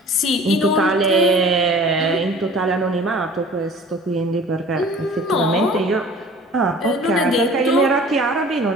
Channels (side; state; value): both; normal; correlation 0.46